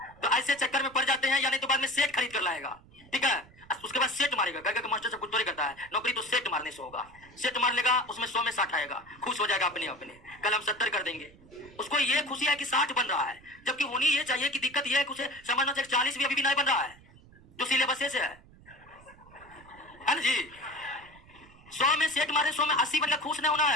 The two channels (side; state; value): right; noise; rumble, 24 dB below the sound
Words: तो ऐसे चक्कर में पड़ जाते हैं, या नहीं तो बाद में सेट खरीद कर लाएगा, ठीक है। उसके बाद सेट मारेगा, गए मास्टर से कुछ तो करता है, नौकरी तो सेट मारने से होगा। सेट मार लेगा, उसमें 100 में 60 आएगा, खुश हो जाएगा अपने अपने, कल हम 70 कर देंगे। उसको ये खुशी है कि 60 बन रहा है, जबकि होनी ये चाहिए कि दिक्कत ये है कि उसे समझना चाहिए 40 भी अभी भी नहीं बन रहा है, जो सिलेबस से है ना जी। 100 में सेट मारे, 100 में 80 बनकर खुश नहीं होना